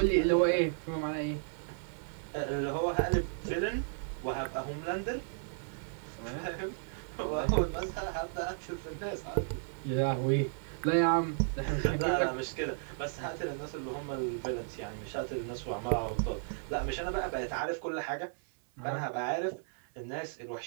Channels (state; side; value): silent; left; 55 dB below the other